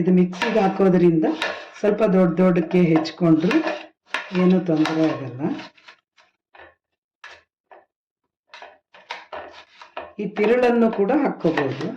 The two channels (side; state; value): both; identical; correlation 1.00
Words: ಮಿಕ್ಸಿಗೆ ಹಾಕೋದ್ರಿಂದ ಸ್ವಲ್ಪ ದೊಡ್ಡಕ್ಕೆ ಹೆಚ್ಕೊಂಡ್ರು ಏನೂ ತೊಂದರೆ ಆಗಲ್ಲ. ಈ ತಿರುಳನ್ನು ಕೂಡ ಹಾಕ್ಕೋಬಹುದು.